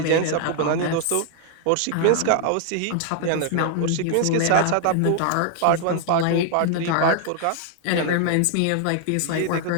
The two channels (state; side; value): different; both; correlation 0.00